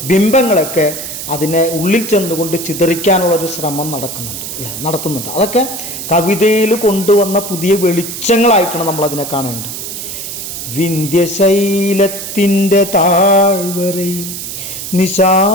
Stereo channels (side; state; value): right; noise; hiss, 7 dB below the sound